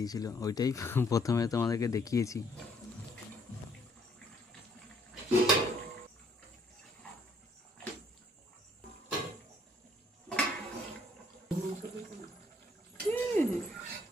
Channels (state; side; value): normal; both; correlation 0.65